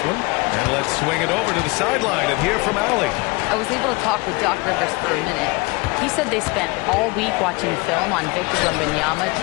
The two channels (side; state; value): right; quieter; 25.5 dB